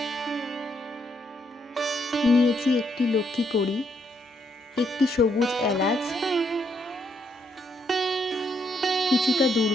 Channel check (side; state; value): both; normal; correlation 0.75